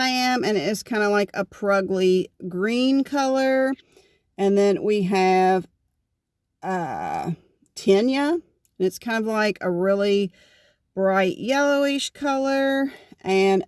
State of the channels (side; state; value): both; identical; correlation 1.00